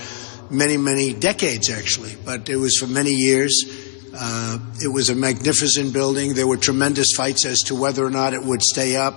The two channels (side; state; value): right; silent; digital silence